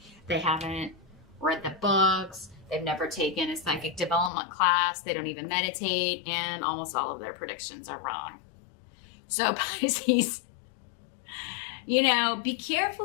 They haven't read the books. They've never taken a psychic development class. They don't even meditate, and almost all of their predictions are wrong. So Pisces, be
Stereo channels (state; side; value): drops out; right; at 4.3 s